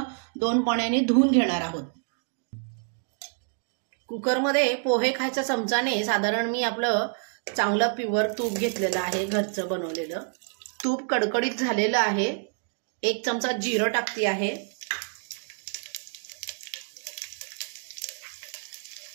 2 पाण्याने धुवून घेणार आहोत। कुकरमध्ये पोहे खायच्या चमचाने साधारण मी आपलं चांगलं प्युअर तूप घेतलेलं आहे, घरचं बनवलेलं। तूप कडकडीत झालेलं आहे। 1 चमचा जिरं टाकते आहे,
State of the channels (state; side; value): silent; left; 56 dB below the other